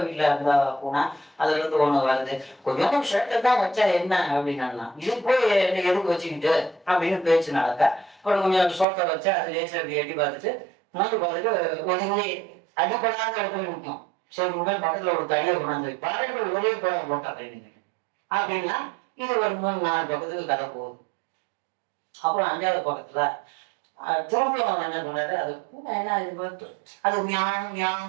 வீட்டில் இருந்தா பூனா அதுல இருந்து ஒண்ணு வருது, கொஞ்சம் ஷர்ட்டை தான் வச்சா என்ன அப்படின்னா, இது போய் எதுக்கு வச்சுக்கிட்டு அப்படின்னு பேச்சு நடக்க. அப்புறம் கொஞ்சம் சோட்டை வச்சா அது லேசா அப்படி எட்டி பார்த்துட்டு பார்த்துட்டு ஒதுங்கி அடிப்படாத இடத்துல நிற்கும். சரி உடனே பக்கத்துல ஒரு தடியை கொண்டாந்து பாருங்கள் ஒரே போட்டா அப்படின்னா இது ஒரு 3-4 பக்கத்துக்கு கதை போகுது. அப்புறம் 5வது பக்கத்துல திரும்பியும் என்ன பண்ணாரு, அது என்ன அது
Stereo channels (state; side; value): drops out; left; at 8.8 s